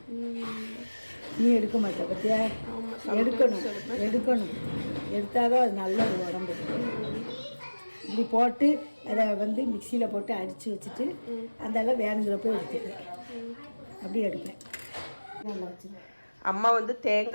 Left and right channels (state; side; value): inverted; both; correlation -1.00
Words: நீ எடுக்க மாட்டே பத்தியா? எடுக்கணும். எடுத்தாதான் அது நல்ல ஒரு உடம்பு. இப்படி போட்டு அதை வந்து மிக்சியில் போட்டு அடித்து வச்சுட்டு அதெல்லாம் வேணுங்கிறப்ப எடுத்துப்பேன். அப்படி எடுப்பேன். நல்லா வச்சுருவேன். அம்மா வந்து